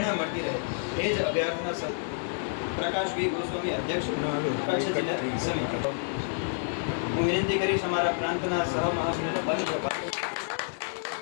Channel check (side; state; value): right; silent; digital silence